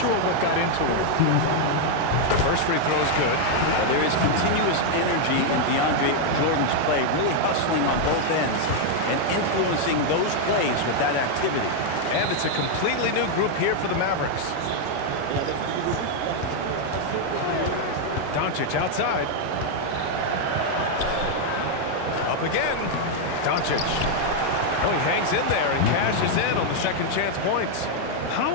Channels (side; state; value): both; different; correlation 0.00